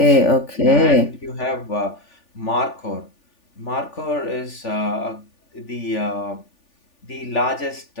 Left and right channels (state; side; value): late; right; 3.4 ms